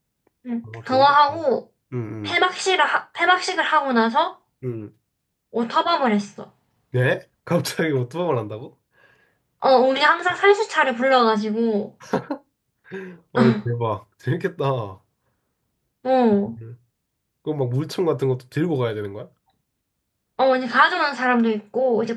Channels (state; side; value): identical; both; correlation 1.00